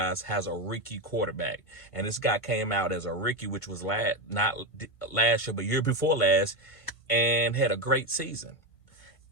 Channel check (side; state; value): right; late; 1.5 ms